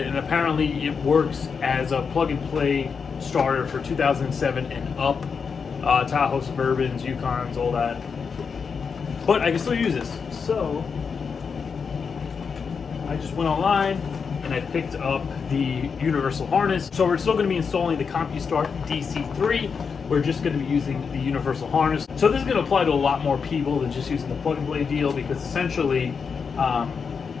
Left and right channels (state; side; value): quieter; right; 5.8 dB